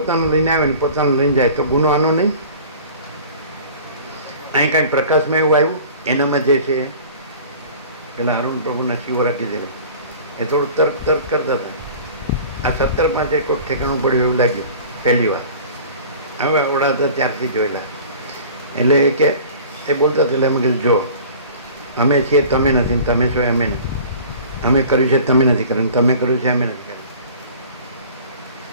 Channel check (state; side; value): inverted; both; correlation -0.44